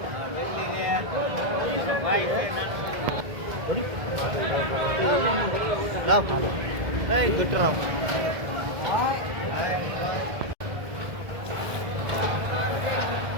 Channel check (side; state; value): left; late; 1.7 ms